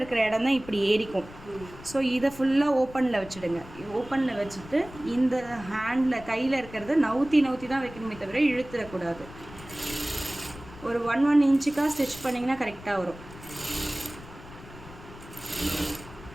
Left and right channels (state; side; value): noise; left; rumble, 17 dB below the sound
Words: இடம் தான் இப்படி ஏறிக்கும். ஸோ இதை ஃபுல்லாக ஓப்பனில் வச்சுடுங்க. ஓப்பனில் வச்சுட்டு இந்த ஹேண்டில் கையில் இருக்கிறத நவுத்தி தான் வைக்கணுமே தவிர இழுத்துடக்கூடாது. ஒரு 1 இன்ச்சுக்காக ஸ்டிச் பண்ணிங்கன்னா கரெக்டாக வரும்.